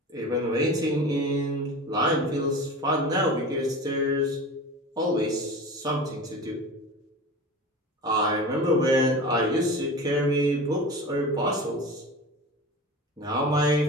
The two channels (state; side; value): normal; both; correlation 0.32